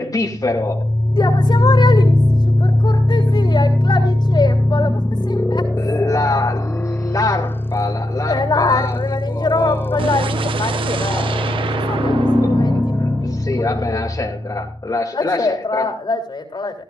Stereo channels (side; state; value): both; normal; correlation 0.85